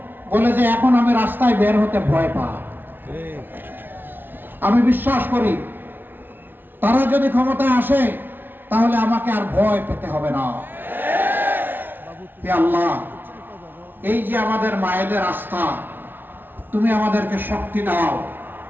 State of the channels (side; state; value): left; late; 0.096 ms